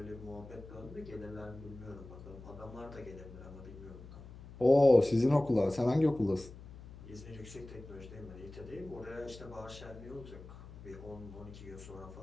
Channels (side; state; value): left; noise; hum, 15 dB below the sound